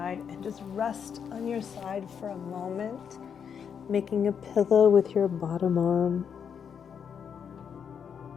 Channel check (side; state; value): right; quieter; 7.3 dB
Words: and just rest on your side for a moment, making a pillow with your bottom arm.